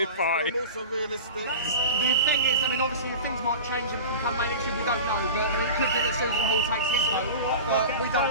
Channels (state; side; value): inverted; both; correlation -0.33